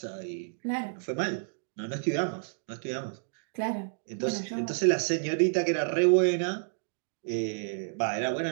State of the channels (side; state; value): left; silent; digital silence